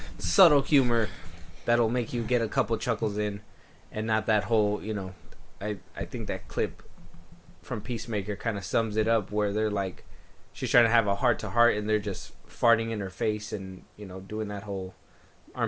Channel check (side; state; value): both; identical; correlation 1.00